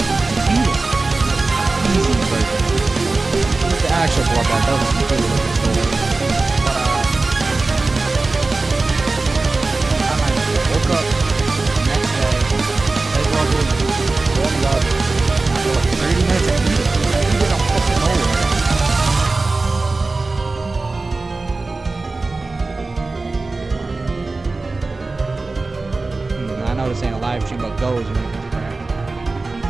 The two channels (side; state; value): left; quieter; 3.5 dB